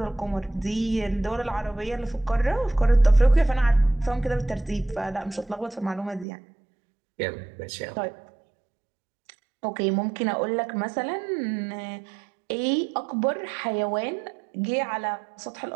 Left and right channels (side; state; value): left; drops out; at 6.2 s